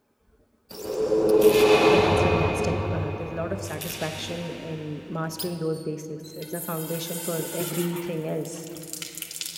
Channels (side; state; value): both; identical; correlation 1.00